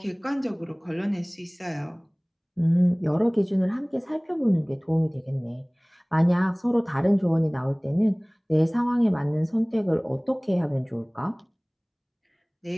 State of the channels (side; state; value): both; identical; correlation 1.00